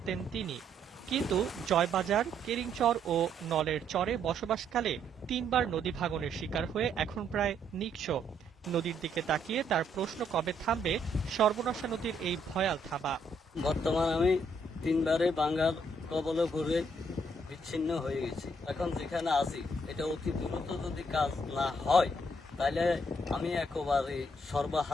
তিনি, কিন্তু জয়বাজার, কেরিংচর ও নলের চরে বসবাসকালে ৩বার নদী ভাঙনের শিকার হয়ে এখন প্রায় নিঃস্ব। নদীর দিকে তাকিয়ে তার প্রশ্ন, কবে থামবে সর্বনাশা নদীর এই ভয়াল থাবা। বর্তমান আমি ৩বারে বাঙ্গার কবলে পড়ে বিচ্ছিন্ন হয়ে গেছি। এখন যেখানে আছি এটা অতি দ্রুত যদি কাজ না হয় তাহলে আমি একেবারে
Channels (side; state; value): both; normal; correlation 0.71